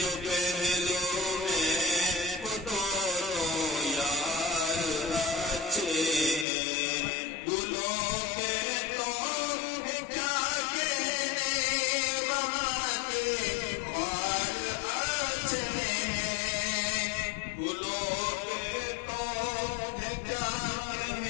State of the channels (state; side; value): drops out; right; at 6.5 s